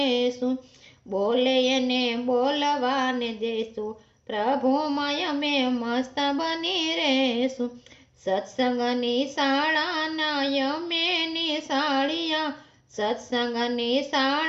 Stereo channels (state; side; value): identical; both; correlation 1.00